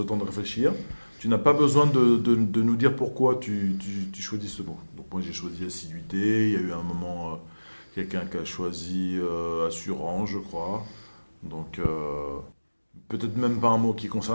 temps de réfléchir. Tu n'as pas besoin de nous dire pourquoi tu choisis ce mot. Donc moi j'ai choisi assiduité. Il y a eu un moment quelqu'un qui a choisi assurance, je crois. Donc peut-être même pas un mot qui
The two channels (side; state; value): both; inverted; correlation -1.00